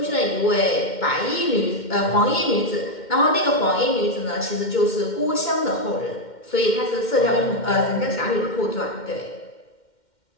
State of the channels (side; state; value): right; late; 2.1 ms